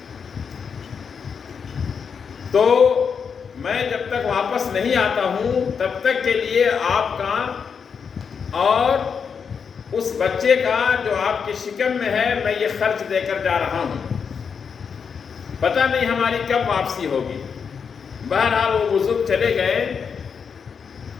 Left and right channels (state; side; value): quieter; right; 6.3 dB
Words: تو میں جب تک واپس نہیں آتا ہوں تب تک کے لیے آپ کا اور اس بچے کا جو آپ کی شکم میں ہے میں یہ خرچ دے کر جا رہا ہوں، پتہ نہیں ہماری کب واپسی ہوگی۔ بہرحال وہ بزرگ چلے گئے